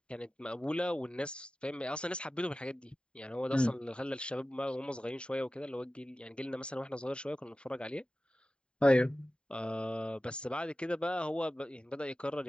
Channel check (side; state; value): right; late; 0.051 ms